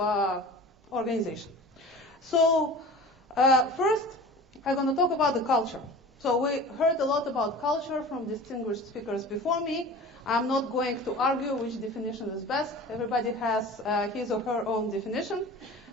organization. So first, I'm going to talk about the culture. So we heard a lot about culture from distinguished speakers before me. I'm not going to argue which definition is best. Everybody has his or her own definition.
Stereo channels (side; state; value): both; normal; correlation 0.38